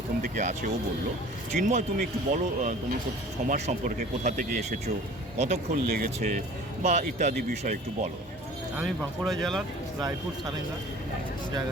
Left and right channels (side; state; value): both; normal; correlation 0.45